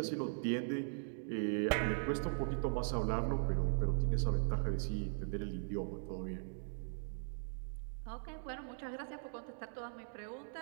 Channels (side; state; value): left; silent; digital silence